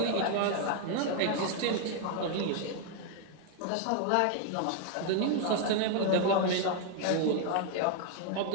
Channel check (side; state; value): both; different; correlation 0.00